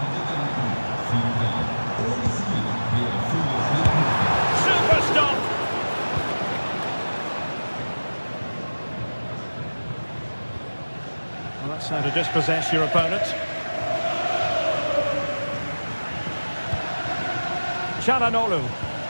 Super stop. Well, that's how to dispossess your opponent. Çalhanoğlu.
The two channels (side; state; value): both; inverted; correlation -1.00